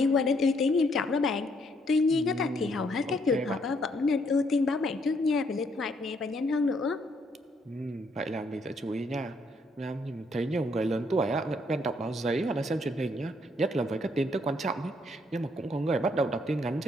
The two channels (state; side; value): normal; both; correlation 0.70